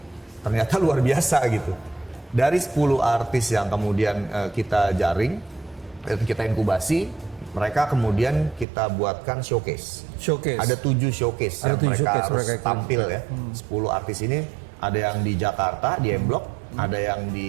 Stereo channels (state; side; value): drops out; left; at 8.7 s